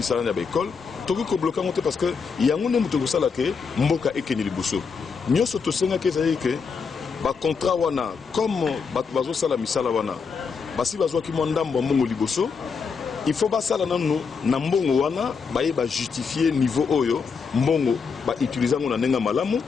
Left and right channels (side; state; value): right; quieter; 5.5 dB